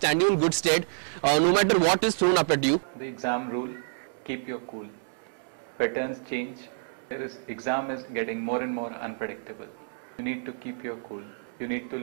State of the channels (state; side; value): silent; left; digital silence